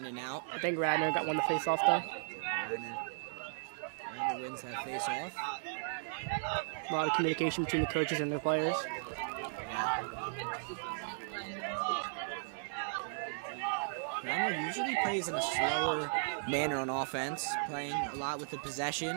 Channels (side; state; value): left; silent; digital silence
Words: and out. I think Radnor got one to face off, though. Radnor wins that face off. A lot of communication between the coaches and the players. Radnor usually plays in a slower manner on offense, playing a lot with the